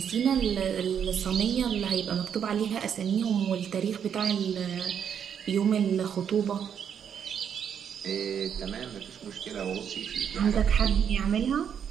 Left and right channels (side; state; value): left; quieter; 8.1 dB